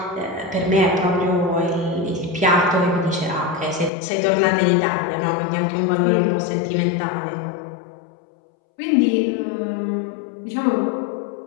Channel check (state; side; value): drops out; right; at 3.9 s